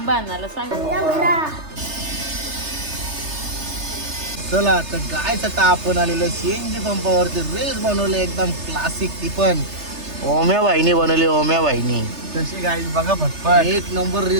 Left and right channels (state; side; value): late; left; 3.3 ms